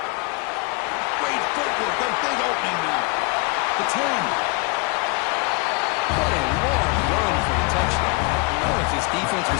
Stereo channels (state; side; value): quieter; right; 29.4 dB